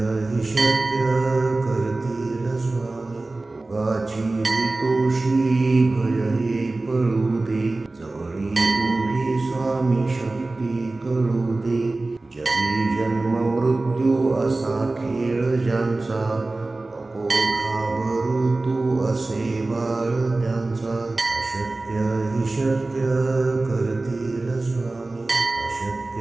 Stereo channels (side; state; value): left; quieter; 3.1 dB